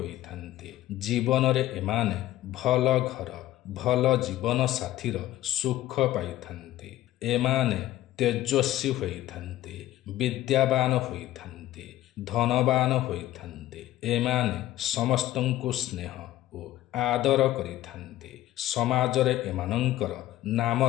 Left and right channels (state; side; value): quieter; right; 14.6 dB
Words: ଜୀବନରେ ଏମାନେ ଭଲ ଘର, ଭଲ ଜୀବନ ସାଥୀର ସୁଖ ପାଇଥାନ୍ତି। ଏମାନେ ତେଜସ୍ୱୀ ହୋଇଥାନ୍ତି, ବିଦ୍ୟାବାନ ହୋଇଥାନ୍ତି, ଧନବାନ ହୋଇଥାନ୍ତି। ଏମାନେ ସମସ୍ତଙ୍କୁ ସ୍ନେହ ଓ ଆଦର କରିଥାନ୍ତି। ସମାଜରେ ଏମାନଙ୍କର